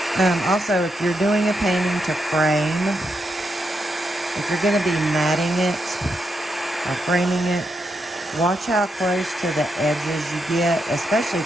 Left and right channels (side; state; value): both; normal; correlation 0.82